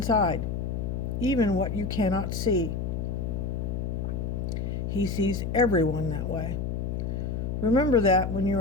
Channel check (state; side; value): noise; left; hum, 2 dB below the sound